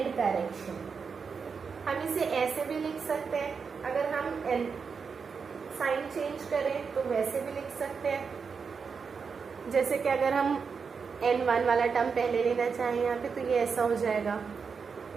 correction. हम इसे ऐसे भी लिख सकते हैं, अगर हम साइन चेंज करें तो वैसे भी लिख सकते हैं, जैसे कि अगर हम N1 वाला टर्म पहले लेना चाहें यहाँ पे, तो ये ऐसा हो जाएगा,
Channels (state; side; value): quieter; left; 5.6 dB